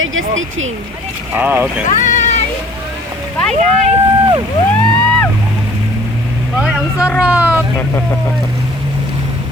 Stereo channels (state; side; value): normal; both; correlation 0.53